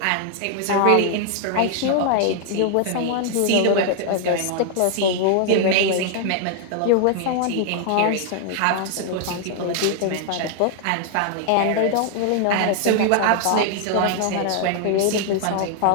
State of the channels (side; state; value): both; different; correlation 0.00